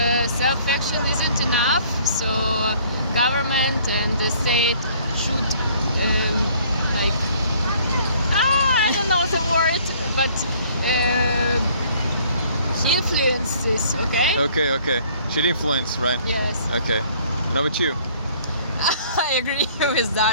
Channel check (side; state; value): both; inverted; correlation -0.57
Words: self-action isn't enough. So government and the state should I don't know the word, but influence this. Okay. Okay. Should influence, right? Yes. Okay. How about you? I agree with